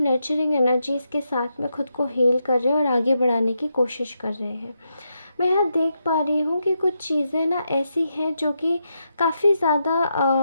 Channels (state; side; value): inverted; both; correlation -0.83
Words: एनर्जीज़ के साथ में खुद को हील कर रहे हैं और आगे बढ़ाने की कोशिश कर रहे हैं। मैं यहाँ देख पा रही हूँ कि कुछ चीज़ें ना ऐसी हैं जो कि काफ़ी